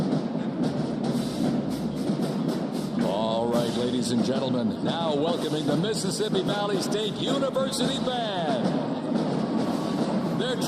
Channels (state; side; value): identical; both; correlation 1.00